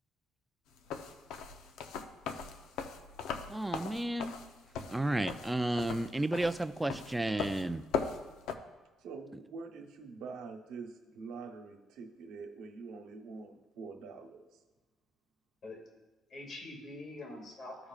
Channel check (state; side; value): normal; both; correlation 0.82